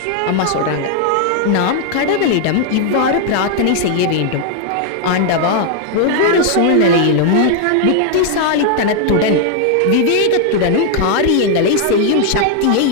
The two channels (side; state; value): both; different; correlation 0.00